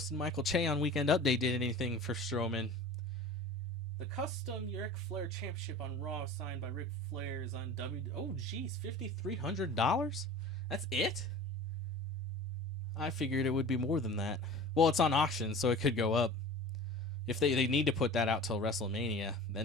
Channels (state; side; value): normal; both; correlation 0.38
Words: and Michael Che on Weekend Update did anything for Strowman. The custom Ric Flair Championship on Raw signed by Ric Flair is on Oh, geez, $5,300? That's it? I figured it would be more than that. Well, it's on auction, so it could go up. If they need to put that out till WrestleMania,